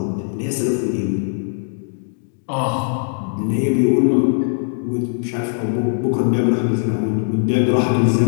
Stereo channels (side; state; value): right; silent; digital silence